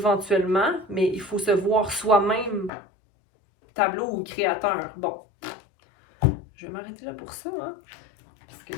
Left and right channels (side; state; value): right; drops out; at 2.7 s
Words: mais il faut se voir soi-même tableau ou créateur. Bon, je vais m'arrêter là pour ça, hein? Parce que